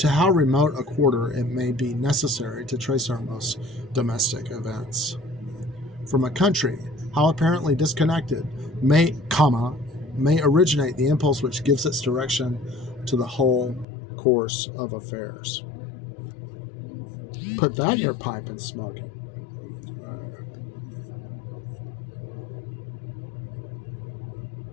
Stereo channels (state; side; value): drops out; right; at 13.9 s